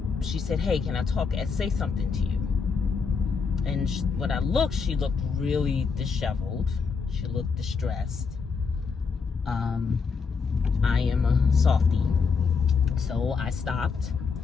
She said, "Hey, can I talk and say something to you?" And when I looked, she looked really disheveled. She looked distressed. I am a softie, so I stopped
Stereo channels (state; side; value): quieter; right; 5.3 dB